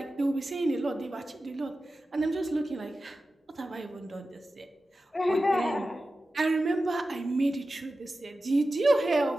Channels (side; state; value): both; normal; correlation 0.94